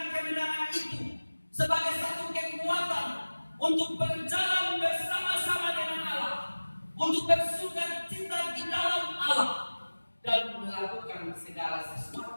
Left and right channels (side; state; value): both; inverted; correlation -1.00